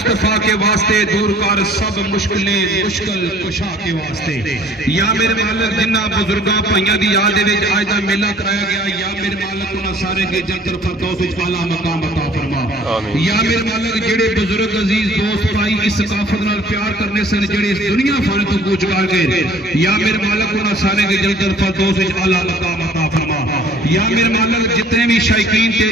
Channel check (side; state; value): both; normal; correlation 0.53